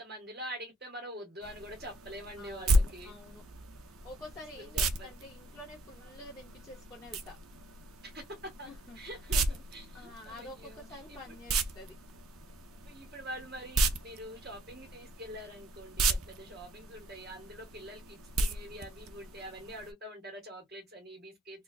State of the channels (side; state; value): both; normal; correlation 0.63